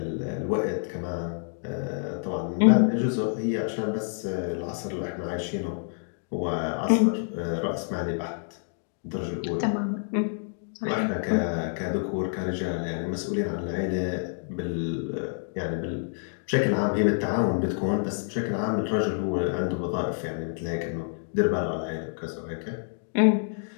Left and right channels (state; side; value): silent; right; digital silence